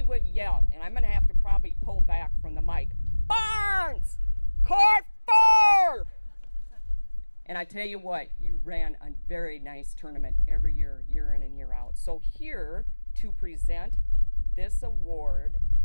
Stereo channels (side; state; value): both; inverted; correlation -1.00